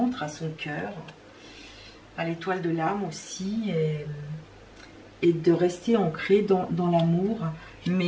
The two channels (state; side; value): identical; both; correlation 1.00